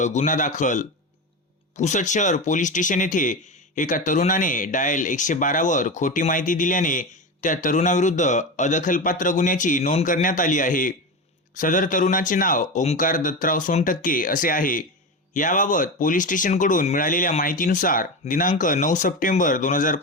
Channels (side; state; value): both; normal; correlation 0.21